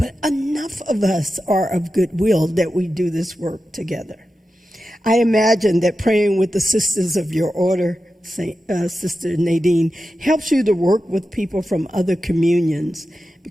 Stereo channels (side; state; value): both; normal; correlation 0.92